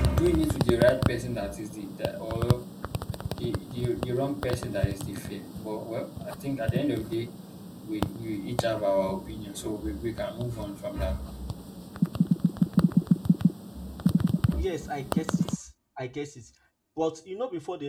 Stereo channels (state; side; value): identical; both; correlation 1.00